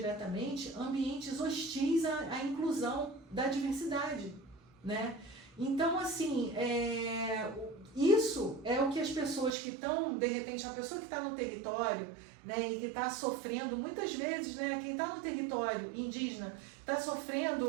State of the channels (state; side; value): drops out; left; at 9.5 s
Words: ambientes hostis à inclusão da diversidade. Né? Então, assim, isso é o que as pessoas que estão, de repente, uma pessoa que está no território, né, e que está sofrendo, muitas vezes, né, quem está no território indígena está